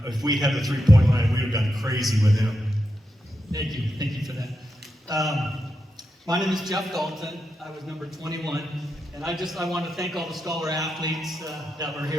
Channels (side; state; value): both; normal; correlation 0.87